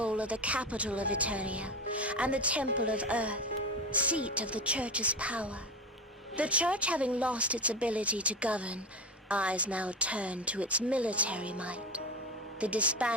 of the capital of Eternia, and the Temple of Earth, seat of the Church's power. The Church, having lost its ability to govern, eyes now turned to its military might, the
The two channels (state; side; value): normal; both; correlation 0.22